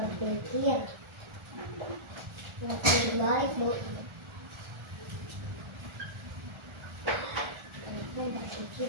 Lebih baik, Bu. Berpikir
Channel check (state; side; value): late; left; 1.3 ms